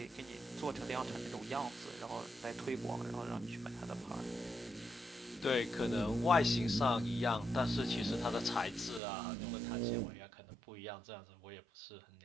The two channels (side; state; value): left; drops out; at 9.0 s